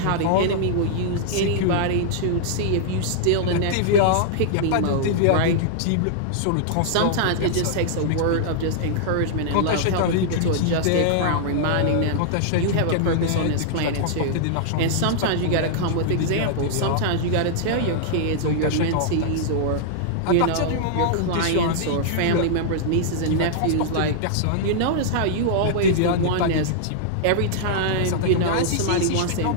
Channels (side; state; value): both; different; correlation -0.01